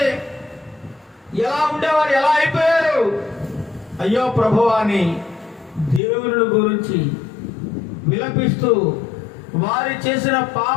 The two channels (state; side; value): drops out; right; at 6.0 s